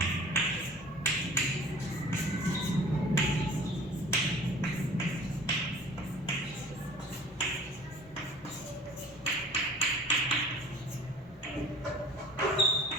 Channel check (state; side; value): normal; both; correlation 0.47